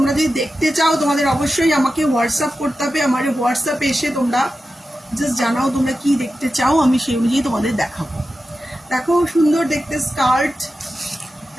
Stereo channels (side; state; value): both; normal; correlation 0.92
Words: যদি দেখতে চাও তোমাদের অবশ্যই আমাকে হোয়াটসঅ্যাপ করতে হবে। আমার হোয়াটসঅ্যাপে এসে তোমরা জাস্ট জানাও তোমরা কি দেখতে চাও, আমি সেই অনুযায়ী তোমাদের দেখাবো। দেখো সুন্দর দেখতে স্কার্ট।